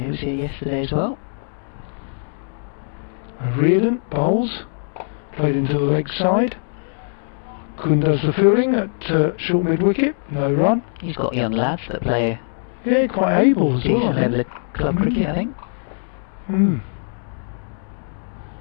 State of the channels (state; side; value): silent; right; 65 dB below the other